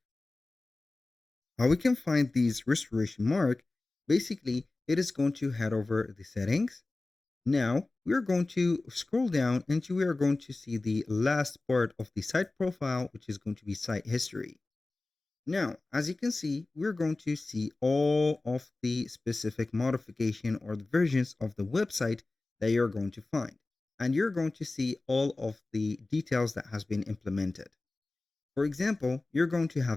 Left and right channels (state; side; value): quieter; right; 3.2 dB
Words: How we can find these restoration mark, basically, it is going to head over the settings. Now we are going to scroll down and we are going to see the last part of the site profile, which is going to be site history. Now, as you can see, we're going to see all of the specific modification or the versions of the website that you're going to find. And you're going to see all of the details that has been implemented. For example, you're going to have